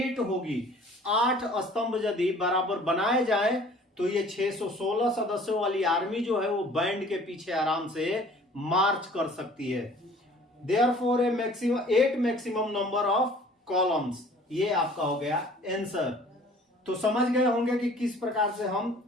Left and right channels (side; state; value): both; normal; correlation 0.51